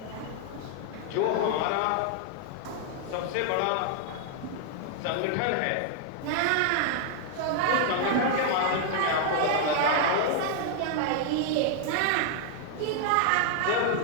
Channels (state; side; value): different; both; correlation 0.00